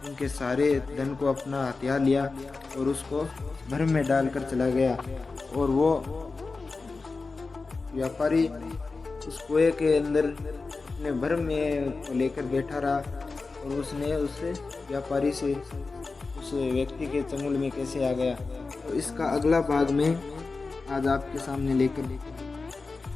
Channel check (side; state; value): right; quieter; 4.0 dB